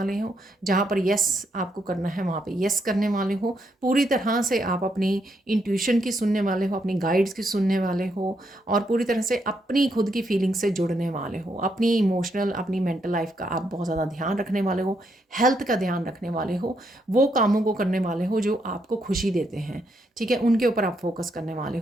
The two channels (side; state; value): both; normal; correlation 0.77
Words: हो, जहाँ पर यस आपको करना है वहाँ पर यस करने वाले हो। पूरी तरह से आप अपनी इंट्यूशन की सुनने वाले हो, अपनी गाइड्स की सुनने वाले हो, और पूरी तरह से अपनी खुद की फीलिंग से जुड़ने वाले हो। अपनी इमोशनल, अपनी मेंटल लाइफ का आप बहुत ज़्यादा ध्यान रखने वाले हो, हेल्थ का ध्यान रखने वाले हो, वो कामों को करने वाले हो जो आपको खुशी देते हैं। ठीक है, उनके ऊपर आप फोकस करने वाले